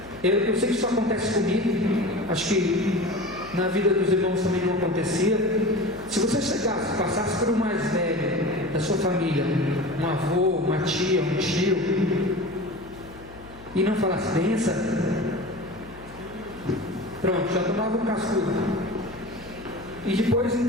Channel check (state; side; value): noise; left; hum, 20 dB below the sound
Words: eu sei que isso acontece comigo, acho que na vida dos irmãos também não acontecia. Se você chegasse, passasse por um mais velho da sua família, um avô, uma tia, um tio, e não falasse benção, pronto, já tomava um cascudo. E depois em